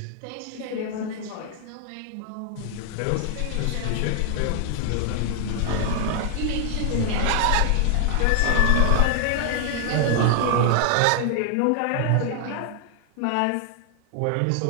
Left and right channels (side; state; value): both; different; correlation 0.00